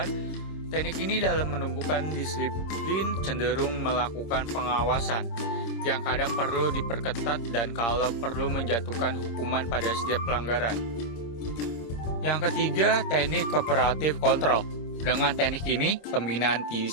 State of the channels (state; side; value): late; right; 26 ms